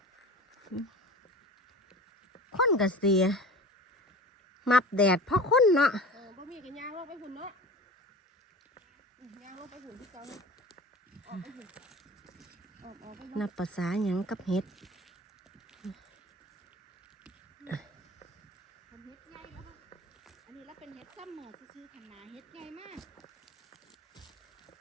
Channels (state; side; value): normal; both; correlation 0.37